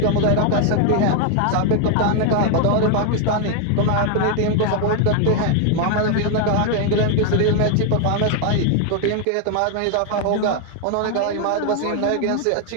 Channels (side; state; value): both; different; correlation 0.01